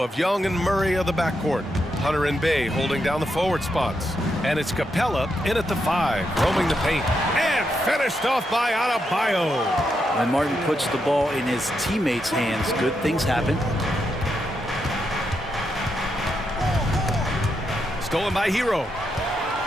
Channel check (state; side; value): normal; both; correlation 0.82